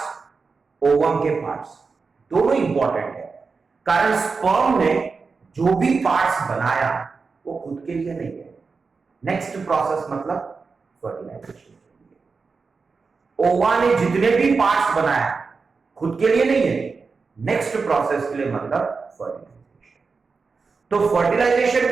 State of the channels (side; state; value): left; quieter; 4.7 dB